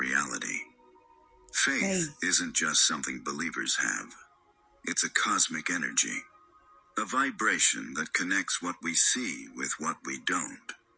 Faith isn't just something believers have. It's a cosmic energy, a vibration that connects what we see with what we don't.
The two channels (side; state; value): both; identical; correlation 1.00